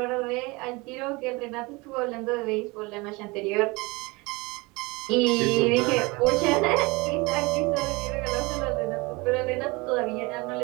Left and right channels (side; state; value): left; quieter; 24.8 dB